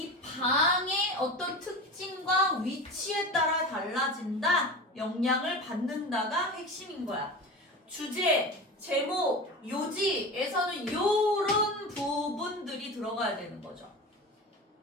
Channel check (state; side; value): normal; both; correlation 0.29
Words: 방의 어떤 특징과 위치에 따라 달라진다. 영향을 받는다가 핵심인 거야. 주제, 제목, 요지에서는 요런 부분들이 들어가야 되는 거죠.